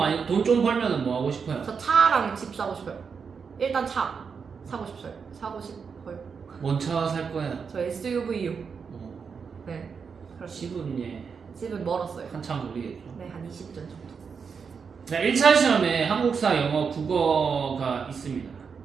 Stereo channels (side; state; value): left; quieter; 5.9 dB